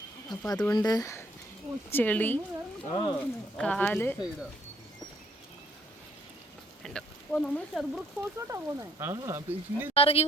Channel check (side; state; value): both; normal; correlation 0.66